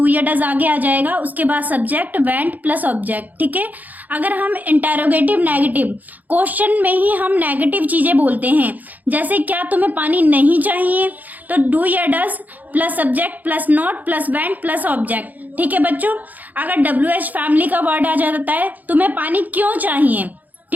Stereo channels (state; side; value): late; left; 0.081 ms